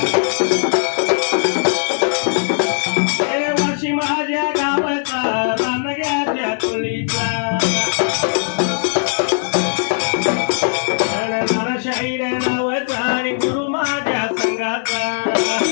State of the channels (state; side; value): silent; right; digital silence